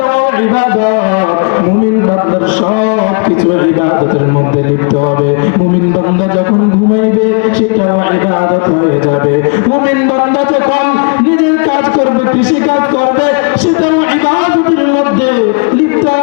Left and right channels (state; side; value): quieter; right; 35.7 dB